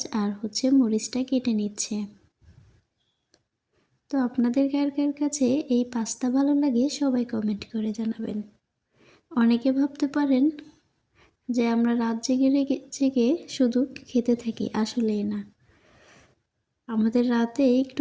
আর মরিচটা কেটে নিচ্ছে। তো আপনাদের কার কার কাছে এই পাস্তা ভালো লাগে সবাই কমেন্ট করে জানাবেন। অনেকে ভাবতে পারেন যে আমরা রাত জেগে জেগে শুধু খেতে থাকি, আসলেই না। আমাদের রাতে একটু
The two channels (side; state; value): both; identical; correlation 1.00